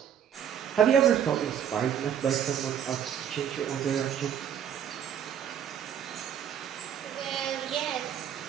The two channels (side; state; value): left; quieter; 9.1 dB